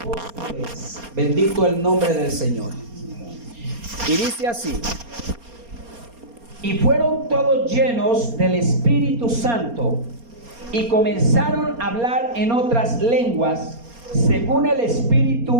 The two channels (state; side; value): late; left; 4.3 ms